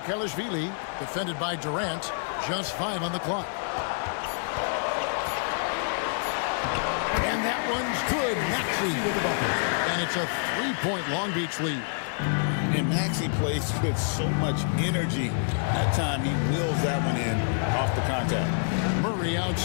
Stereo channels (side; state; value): right; silent; 59 dB below the other